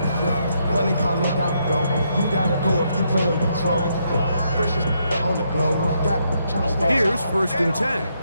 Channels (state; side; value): inverted; both; correlation -0.76